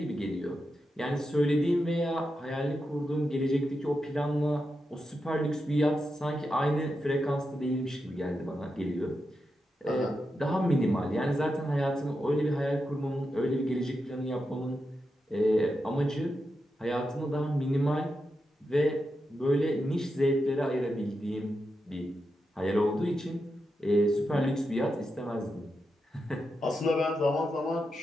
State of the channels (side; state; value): both; normal; correlation 0.87